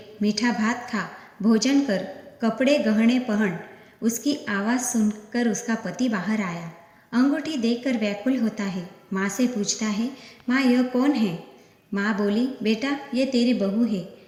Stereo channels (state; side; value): identical; both; correlation 1.00